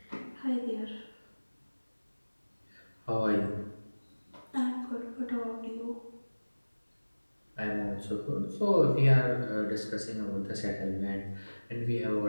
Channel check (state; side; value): inverted; both; correlation -1.00